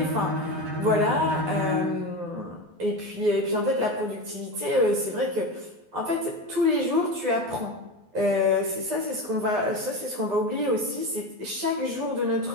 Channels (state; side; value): late; left; 12 ms